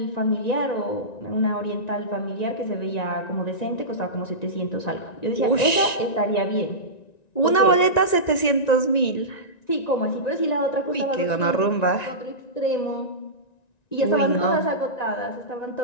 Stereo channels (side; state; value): right; late; 1.9 ms